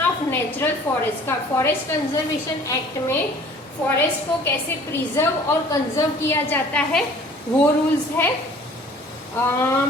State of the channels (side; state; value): both; normal; correlation 0.50